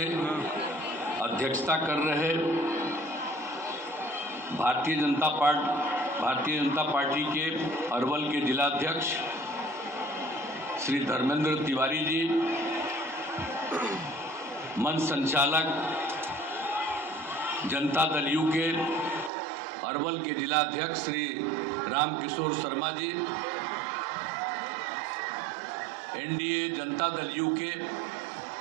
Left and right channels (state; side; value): drops out; left; at 19.3 s